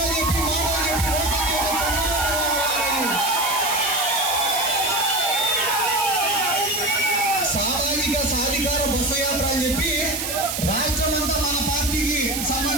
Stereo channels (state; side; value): noise; right; hiss, 3 dB below the sound